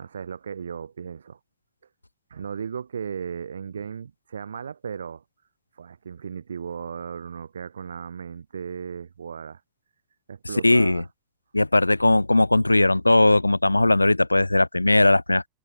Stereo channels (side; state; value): both; inverted; correlation -0.99